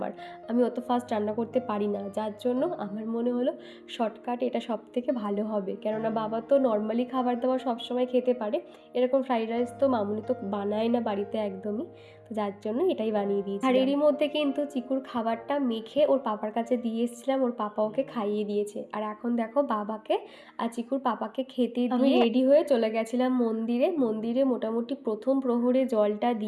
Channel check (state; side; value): identical; both; correlation 1.00